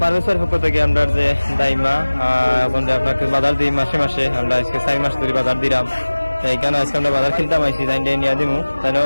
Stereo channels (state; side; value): inverted; both; correlation -1.00